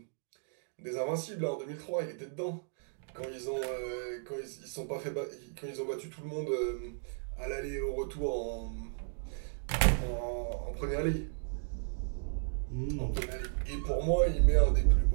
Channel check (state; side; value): silent; left; digital silence